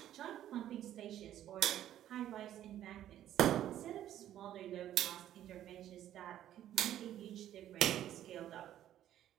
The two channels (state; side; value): quieter; left; 11.9 dB